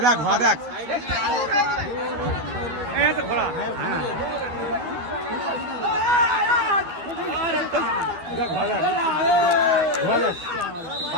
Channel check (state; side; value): late; left; 12 ms